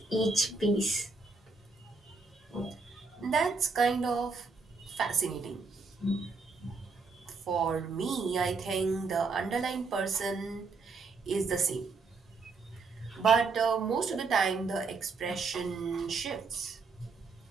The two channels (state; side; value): quieter; left; 4.3 dB